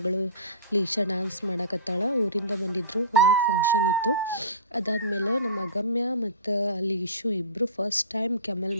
ಲೀಶಾ ಡ್ಯಾನ್ಸ್ ಮಾಡಕತ್ತಾಳ. ಊರಿಂದ ಬಂದಿದ್ದರು, ಮನ್ಯಾಗ ಫಂಕ್ಷನ್ ಇತ್ತು. ಅದಾದಮೇಲೆ ನಮ್ಮ ಅಗಮ್ಯ ಮತ್ತು ಲೀಶು ಇಬ್ಬರು ಫಸ್ಟ್ ಟೈಮ್ ಕೆಮಲ್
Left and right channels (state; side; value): inverted; both; correlation -0.34